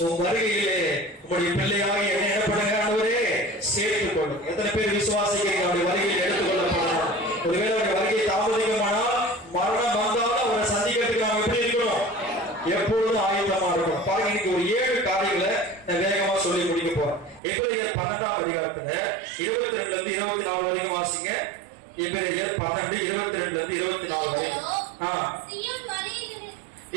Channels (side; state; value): left; drops out; at 17.4 s